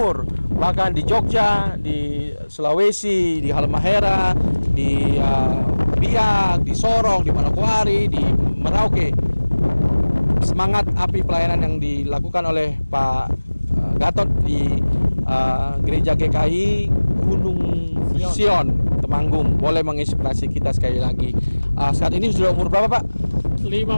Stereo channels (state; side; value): inverted; both; correlation -1.00